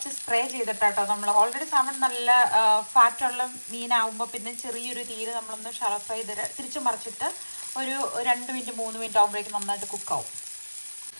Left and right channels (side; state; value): both; inverted; correlation -1.00